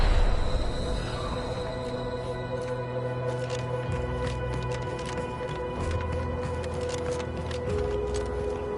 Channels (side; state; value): both; identical; correlation 1.00